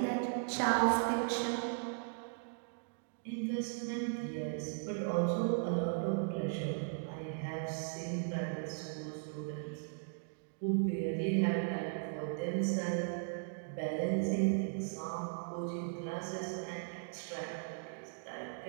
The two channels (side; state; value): left; silent; digital silence